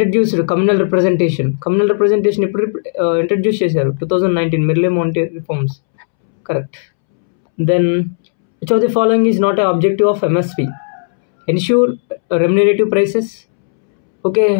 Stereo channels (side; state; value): right; silent; 70 dB below the other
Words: communal representation? Communal representation ఇప్పుడు ఇంట్రడ్యూస్ చేశారు 2019 Morley Minto reforms. Correct. Then which of the following is not an objective of MSP? Ensure remunerative prices. Okay.